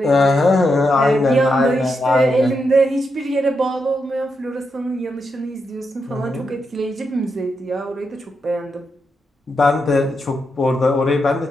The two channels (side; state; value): both; normal; correlation 0.84